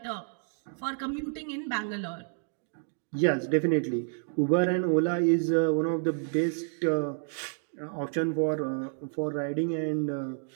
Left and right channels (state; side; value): silent; left; digital silence